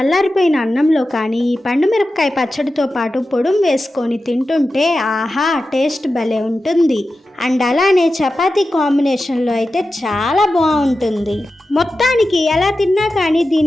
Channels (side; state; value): both; normal; correlation 0.93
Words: అన్నంలో కానీ ఈ పండు మిరపకాయ పచ్చడితో పాటు పొడుం వేసుకొని తింటుంటే ఆహా టేస్ట్ భలే ఉంటుంది. అండ్ అలానే చపాతీ కాంబినేషన్లో అయితే చాలా బాగుంటుంది. మొత్తానికి ఎలా తిన్నా కానీ